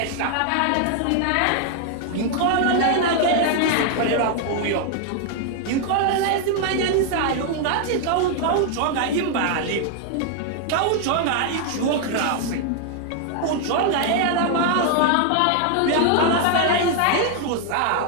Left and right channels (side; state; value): both; different; correlation 0.00